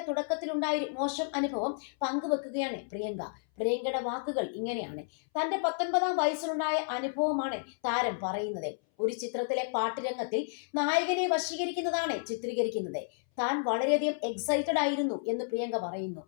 തുടക്കത്തിലുണ്ടായ ഒരു മോശം അനുഭവം പങ്കുവെക്കുകയാണ് പ്രിയങ്ക. പ്രിയങ്കയുടെ വാക്കുകൾ ഇങ്ങനെയാണ്. തന്റെ 19-ാം വയസ്സിലുണ്ടായ അനുഭവമാണ് താരം പറയുന്നത്. ഒരു ചിത്രത്തിലെ പാട്ടുരംഗത്തിൽ നായകനെ വശീകരിക്കുന്നതാണ് ചിത്രീകരിക്കുന്നത്. താൻ വളരെയധികം എക്സൈറ്റഡ് ആയിരുന്നു എന്ന് പ്രിയങ്ക പറയുന്നു.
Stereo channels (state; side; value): silent; right; 57 dB below the other